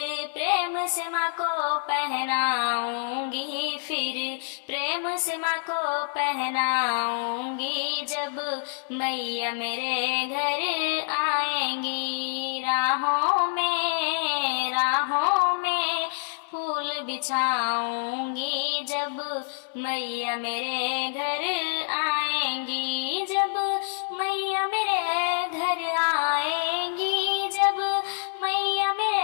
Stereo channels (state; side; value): silent; right; 60 dB below the other